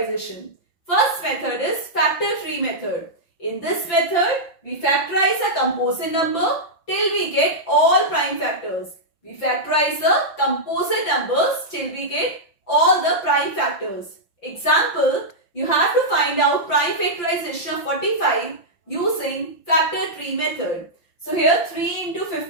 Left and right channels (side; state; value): right; late; 5.9 ms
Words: First method is factor tree method. In this method, we factorize a composite number till we get all prime factors. We factorize the composite numbers till we get all the prime factors. Example, you have to find out prime factorization of 45 using factor tree method. So here 3 into